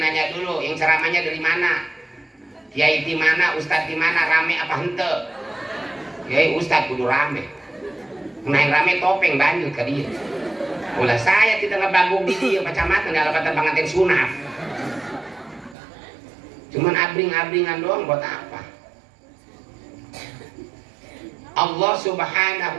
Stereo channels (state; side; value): drops out; left; at 15.8 s